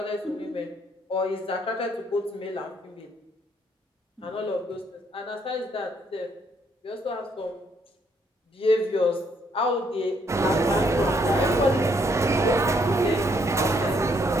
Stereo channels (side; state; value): both; normal; correlation 0.70